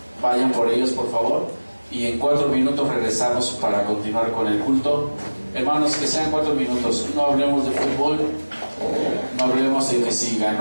vayan por ellos, por favor, y en 4 minutos regresamos para continuar con el culto. Hermanos, que sean 4 minutos, no hablemos de fútbol, no hablemos de que si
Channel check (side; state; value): both; inverted; correlation -1.00